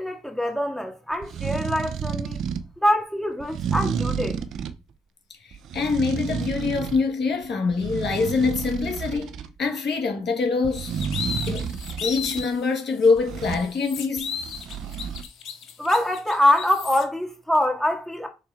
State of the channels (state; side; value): normal; both; correlation 0.79